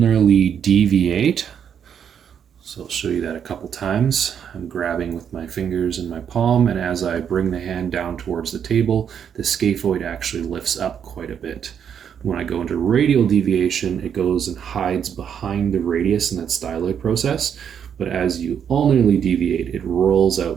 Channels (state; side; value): quieter; left; 8.1 dB